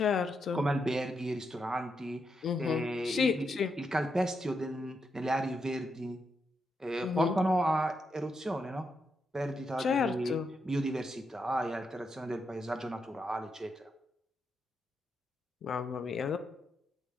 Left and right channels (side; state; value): both; normal; correlation 0.83